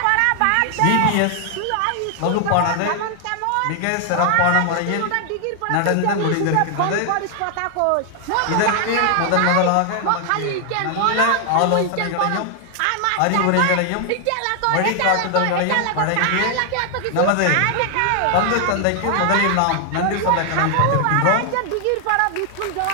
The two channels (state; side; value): different; both; correlation 0.00